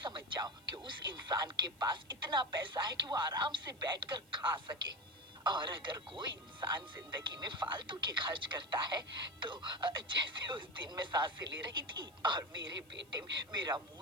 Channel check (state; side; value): noise; right; hiss, 28 dB below the sound